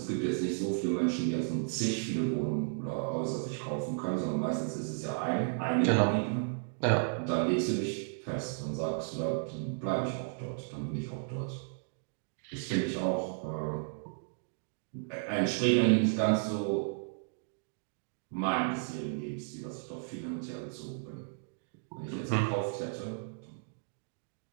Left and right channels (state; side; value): silent; left; digital silence